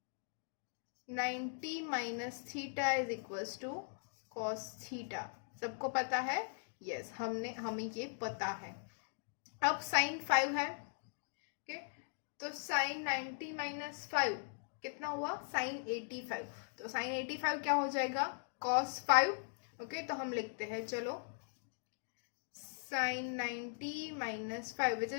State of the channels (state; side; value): silent; right; digital silence